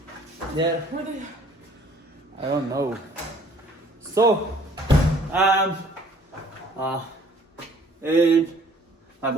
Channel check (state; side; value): normal; both; correlation 0.57